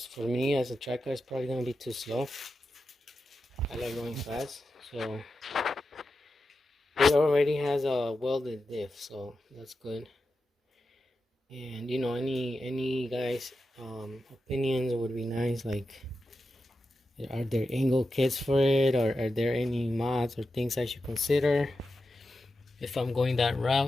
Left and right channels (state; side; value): normal; both; correlation 0.90